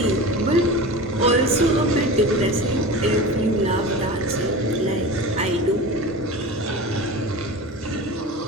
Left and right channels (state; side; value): normal; both; correlation 0.32